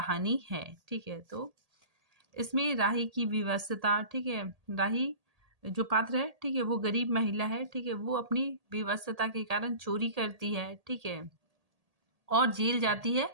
है। ठीक है, तो इसमें राही की विवशता, ठीक है, राही जो पात्र है, ठीक है, वो गरीब महिला है। ठीक है, वो अपनी विवशता के कारण चोरी करती है, ठीक है, और जेल जाती है।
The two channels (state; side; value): late; left; 1.8 ms